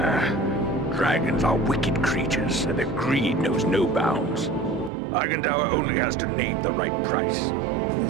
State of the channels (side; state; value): left; drops out; at 4.9 s